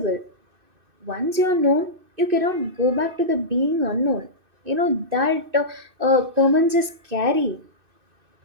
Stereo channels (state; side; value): late; left; 2.6 ms